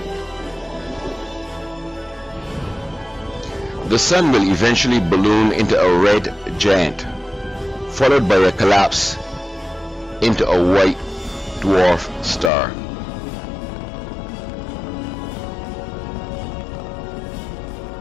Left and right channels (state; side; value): drops out; right; at 12.5 s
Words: The Sun will eventually balloon into a red giant, followed by a collapse into a white dwarf star.